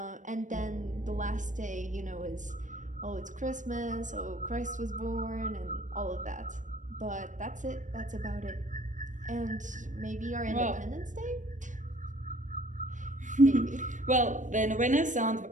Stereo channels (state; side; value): late; left; 0.37 ms